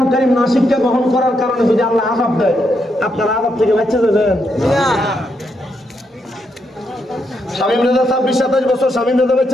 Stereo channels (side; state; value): both; normal; correlation 0.80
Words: কারীম না শিক্ষা গ্রহণ করার কারণে যদি আল্লাহ আযাব দেয় আপনারা আযাব থেকে বাঁচতে যাবেন? শামীম রেজা 26-27 বছর শামীম রেজা